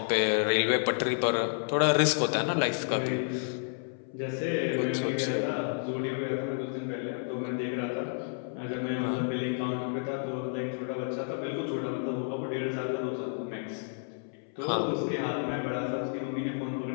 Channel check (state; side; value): silent; right; 57 dB below the other